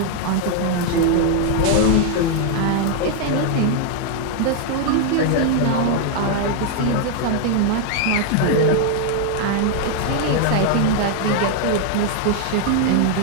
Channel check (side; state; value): both; different; correlation 0.00